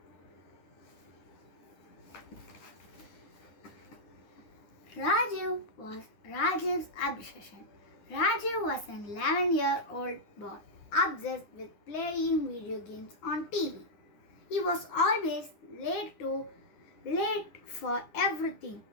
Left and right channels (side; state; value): right; late; 9.9 ms